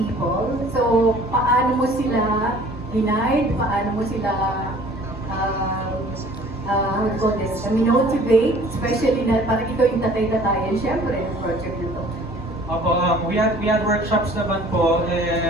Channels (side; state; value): both; normal; correlation 0.51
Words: So, paano mo sila hinide? Paano mo sila how do you call this? Motivate? Especially na parang ikaw yung tatay-tatayan, syempre, yung project nito. Opo, we had workshops naman po,